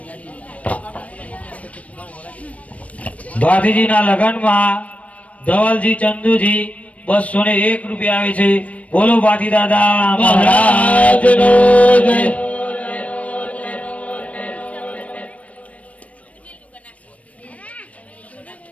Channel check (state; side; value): late; right; 0.066 ms